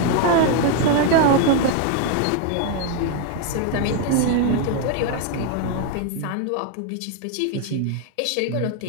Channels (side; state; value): both; different; correlation 0.01